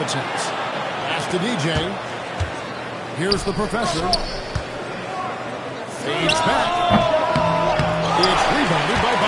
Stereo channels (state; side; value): identical; both; correlation 1.00